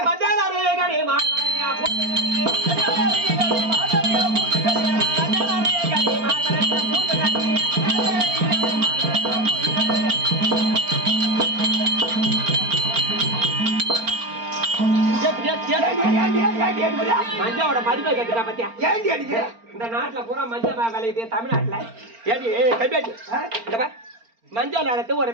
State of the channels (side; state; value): left; late; 4.4 ms